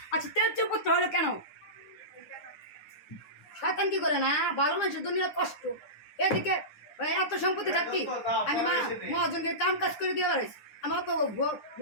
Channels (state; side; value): late; right; 9.8 ms